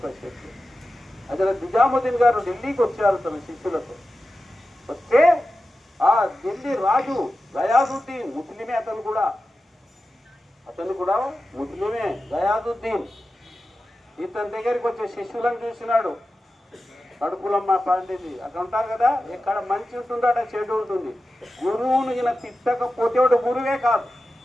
శక్తి. హజరత్ నిజాముద్దీన్ గారు ఢిల్లీకి వచ్చారు తన శిష్యులతో. వస్తే ఆ ఢిల్లీ రాజు గయాదుద్దీన్, ముస్లిమే అతను కూడా ముస్లిమే గయాదుద్దీన్. ఇతని దగ్గరికి వచ్చే శిష్యులను చూసినాడు. కడుపులమ్మ పండింది అక్కడ ఉంటారు కదా, ఎక్కడ మంచి ఉంటుందో అక్కడ చెడు ఉంటుంది. గురువును ఈయన తిట్టకపోతే వాడు గురువే కాదు.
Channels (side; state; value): both; normal; correlation 0.93